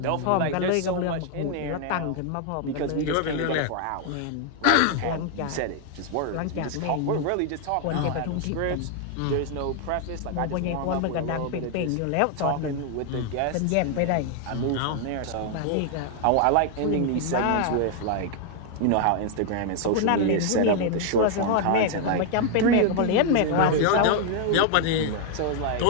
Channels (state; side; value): different; both; correlation 0.00